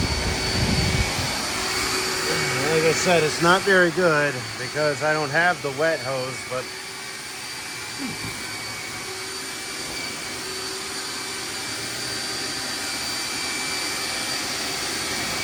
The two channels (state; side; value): identical; both; correlation 1.00